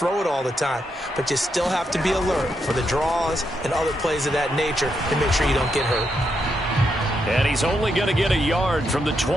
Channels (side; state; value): both; normal; correlation 0.81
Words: it all the time. But you still have to be alert for the draws and other plays of that nature to make sure you don't get hurt. And he's only going to get a yard from the